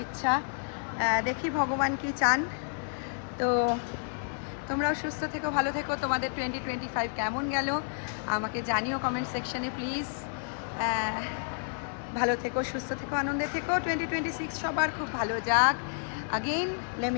ইচ্ছা। দেখি ভগবান কি চান। তো তোমরাও সুস্থ থেকো, ভালো থেকো। তোমাদের 2025 কেমন গেল আমাকে জানিও কমেন্ট সেকশনে প্লিজ। ভালো থেকো, সুস্থ থেকো, আনন্দে থেকো। 2026 সবার খুব ভালো যাক। Again let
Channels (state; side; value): silent; right; digital silence